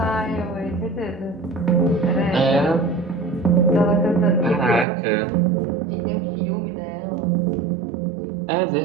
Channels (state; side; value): drops out; left; at 4.9 s